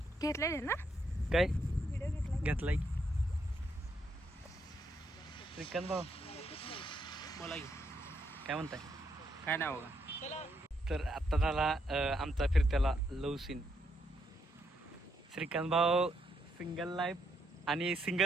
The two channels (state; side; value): normal; both; correlation 0.77